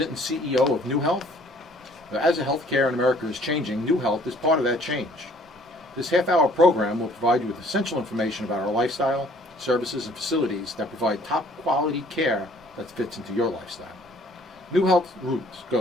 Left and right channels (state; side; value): normal; both; correlation 0.57